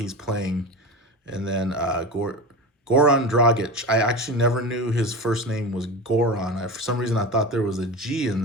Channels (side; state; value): both; normal; correlation 0.26